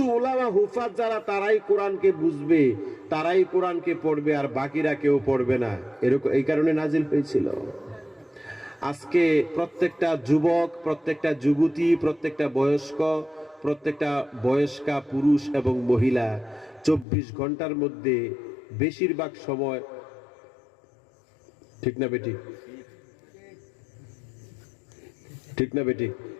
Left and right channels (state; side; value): drops out; right; at 17.1 s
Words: ওলামা হুফাজ যারা, তারাই কোরআনকে বুঝবে, তারাই কোরআনকে পড়বে, আর বাকিরা কেউ পড়বে না, এরকম এই কারণে নাজিল হয়েছিল। আজকে প্রত্যেকটা যুবক, প্রত্যেকটা যুবতী, প্রত্যেকটা বয়স্কা পুরুষ এবং মহিলা 24 ঘন্টার মধ্যে বেশিরভাগ সময়, ঠিক না বেটি? ঠিক না বেটি?